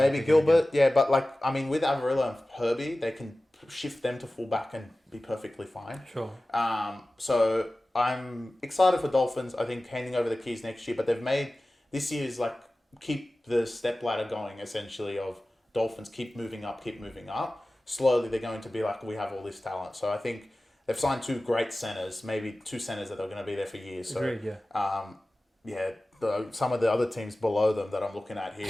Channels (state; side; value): normal; both; correlation 0.97